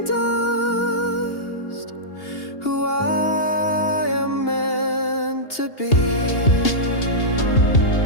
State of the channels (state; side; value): late; right; 2.8 ms